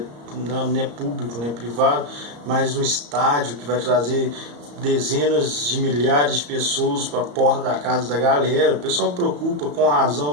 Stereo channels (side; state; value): left; late; 34 ms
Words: não é público, não é privado, mas um estádio que vai trazer dezenas de milhares de pessoas para a porta da casa da galera. O pessoal preocupa com